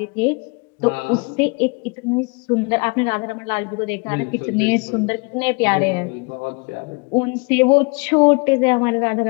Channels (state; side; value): quieter; right; 31.0 dB